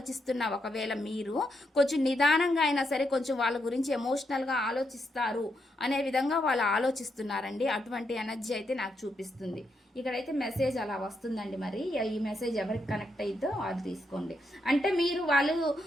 ఒకవేళ మీరు కొంచెం నిదానంగా అయినా సరే కొంచెం వాళ్ళ గురించి ఎమోషనల్గా ఆలోచిస్తారు అనే విధంగా వాళ్ళు ఆలోచిస్తున్నారండి. అటువంటి ఎనర్జీ అయితే నాకు చూపిస్తుంది. ఇక్కడైతే మెసేజ్ అలా వస్తుందండి. మరి ఈ మెసేజ్ ఎవరికి కనెక్ట్ అయిద్దో అది తీసుకోండి. అంటే మీరు వాళ్ళు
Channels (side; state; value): both; normal; correlation 0.81